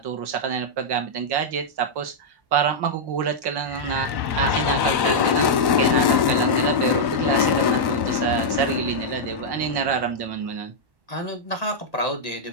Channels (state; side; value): late; left; 1.1 ms